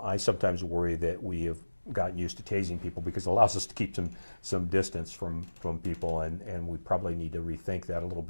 sometimes worry that we have gotten used to tasing people because it allows us to keep some distance from people, and we probably need to rethink that a little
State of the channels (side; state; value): both; inverted; correlation -1.00